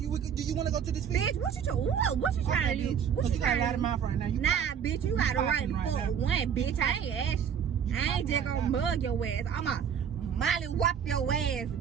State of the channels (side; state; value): left; quieter; 7.9 dB